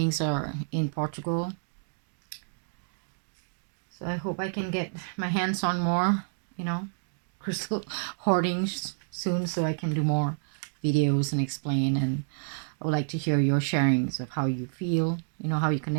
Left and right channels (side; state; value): left; silent; digital silence